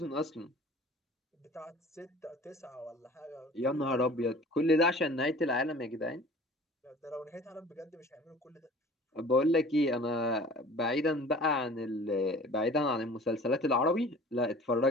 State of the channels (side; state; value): both; normal; correlation 0.45